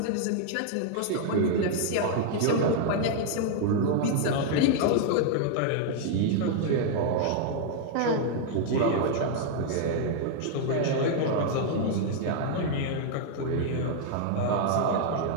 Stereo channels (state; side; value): different; both; correlation 0.00